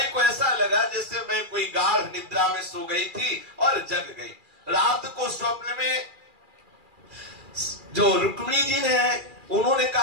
को ऐसा लगा जैसे मैं कोई गाढ़ निद्रा में सो गई थी और जग गई। रात को स्वप्न में जो रुक्मिणी जी ने, उन्होंने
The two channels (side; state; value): left; late; 2.4 ms